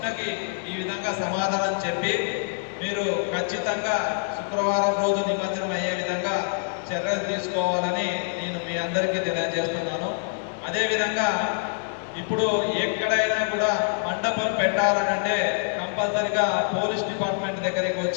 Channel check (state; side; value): silent; right; digital silence